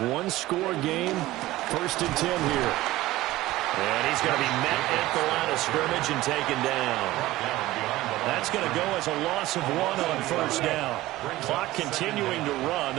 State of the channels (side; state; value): left; quieter; 17.1 dB